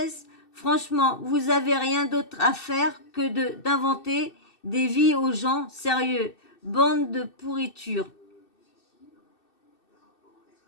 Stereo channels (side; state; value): right; late; 2.6 ms